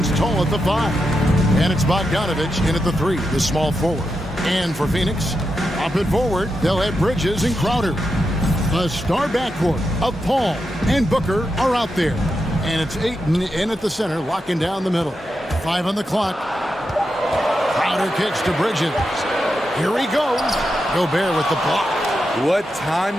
tall at the 5. And it's Bogdanovich in at the 3, the small forward. And for Phoenix, up and forward, they'll have Bridges and Crowder. The star backcourt of Paul and Booker are out there. And it's Ayton in at the center, locking down the middle. 5 on the clock. Crowder kicks to Bridges. Here he goes. Gobert with the block. What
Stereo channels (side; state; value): both; normal; correlation 0.87